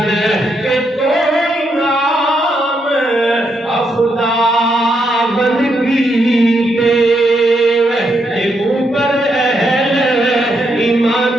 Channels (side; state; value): both; normal; correlation 0.79